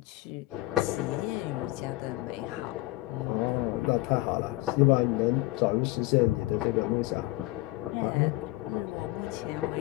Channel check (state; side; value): quieter; right; 19.9 dB